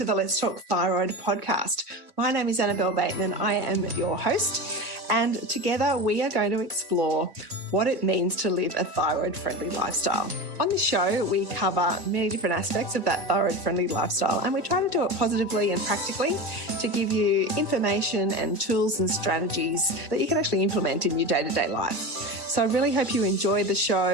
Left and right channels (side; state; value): left; late; 1.5 ms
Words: the Let's Talk Thyroid podcast. My name is Annabelle Bateman. I am your host, and together we are going to explore what it means to live a thyroid-friendly lifestyle. On this show, we cover many different aspects of that thyroid-friendly lifestyle, and we try to do it positively and practically to give you information and tools and strategies that you can actually implement in your day-to-day life. So I really hope you enjoy the